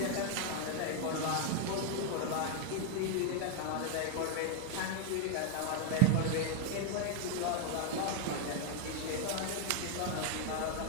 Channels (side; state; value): both; different; correlation 0.00